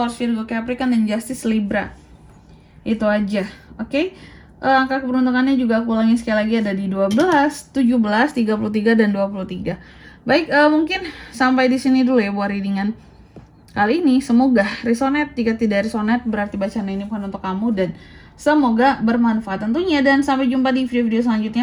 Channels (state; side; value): identical; both; correlation 1.00